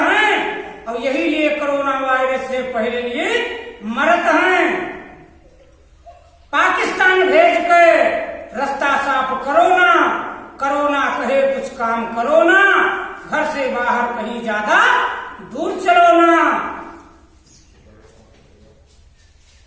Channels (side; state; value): both; identical; correlation 1.00